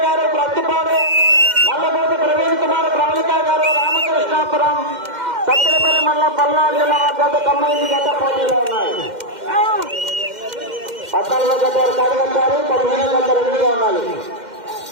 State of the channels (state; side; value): late; left; 2.1 ms